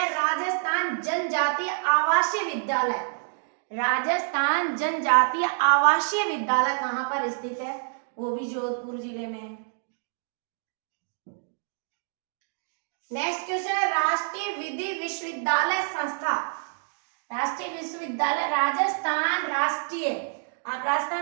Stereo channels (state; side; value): silent; left; digital silence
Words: राजस्थान जनजातीय आवासीय विद्यालय, राजस्थान जनजातीय आवासीय विद्यालय कहाँ पर स्थित है? वो भी जोधपुर जिले में है। नेक्स्ट क्वेश्चन है, राष्ट्रीय विधि विश्वविद्यालय संस्था, राष्ट्रीय विश्वविद्यालय राजस्थान राष्ट्रीय, आप